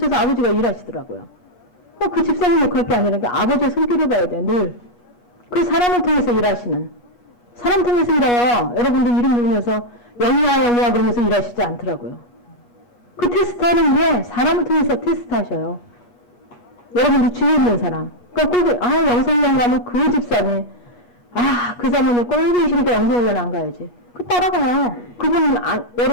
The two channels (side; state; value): right; late; 8.3 ms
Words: 아버지가 일하시더라고요. 그 집사님 역할 게 아니라 아버지의 손길을 봐야 돼. 늘. 그 사람을 통해서 일하시는 사람 통해서 일해요. 여러분들 이름 부르면서 영희야 그러면서 일하시지 않더라고요. 그 테스트하는 게 사람을 통해서 테스트하셔요. 여러분들 주위에 있는 사람. 그러니까 영성훈련 가면 그 집사님 그 사람은 꼴보기 싫으니까 영성훈련 안 가야지. 그 따라가요. 그분